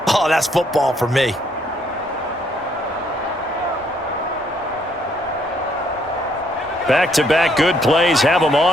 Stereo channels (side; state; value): both; normal; correlation 0.69